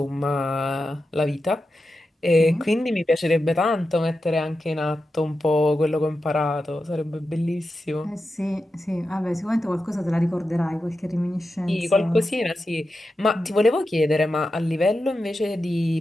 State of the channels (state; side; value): normal; both; correlation 0.90